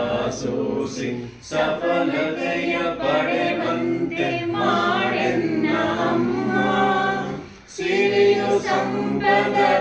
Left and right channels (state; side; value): identical; both; correlation 1.00